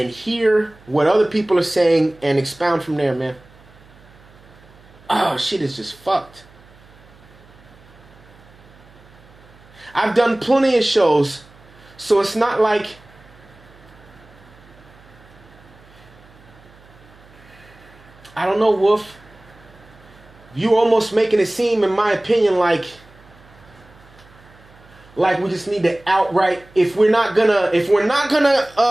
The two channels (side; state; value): right; noise; hum, 25 dB below the sound